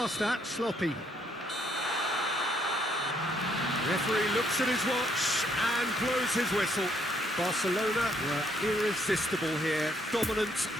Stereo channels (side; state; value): both; normal; correlation 0.70